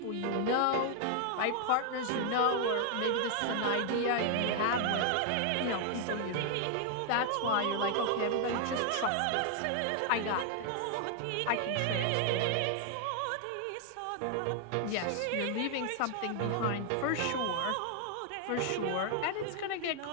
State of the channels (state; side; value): different; both; correlation 0.00